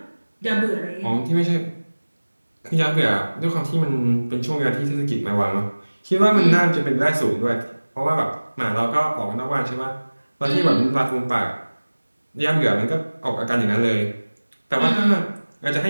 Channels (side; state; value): both; inverted; correlation -1.00